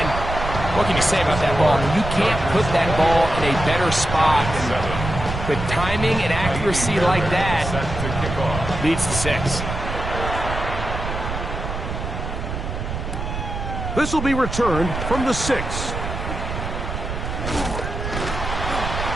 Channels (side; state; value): right; noise; rumble, 5 dB below the sound